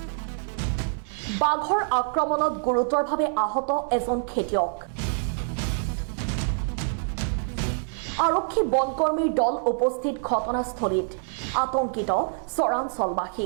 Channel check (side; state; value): left; silent; digital silence